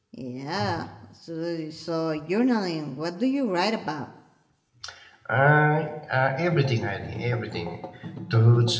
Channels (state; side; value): identical; both; correlation 1.00